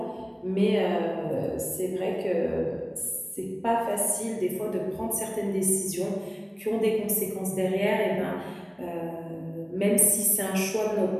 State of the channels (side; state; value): both; identical; correlation 1.00